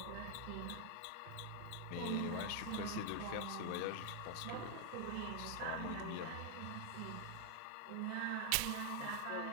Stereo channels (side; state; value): both; different; correlation 0.00